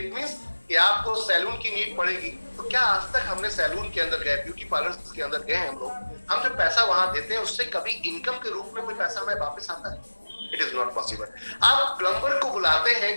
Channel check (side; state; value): both; inverted; correlation -1.00